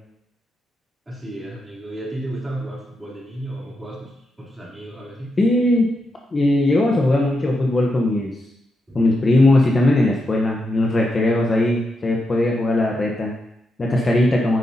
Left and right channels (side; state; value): both; normal; correlation 0.85